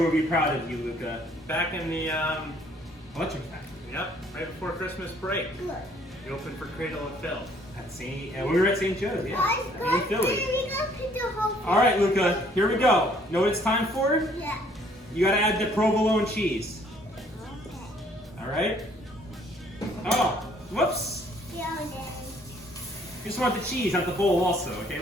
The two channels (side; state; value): both; normal; correlation 0.62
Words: will be proud of you, Luca. Back in the, Electric Factory. yep, right before Christmas break, Good. you opened for Cradle of Filth. At St. We were at St. Joe's, yeah. Guys, In guys, Philly. we gotta put the whole thing. All right, Luca, here we go. Know what it's time for? Yeah. You gotta add the provolone cheese. Okay. All right? Oh, whoops. Yeah, Daddy. You just want the cheese, not the bowl also, okay,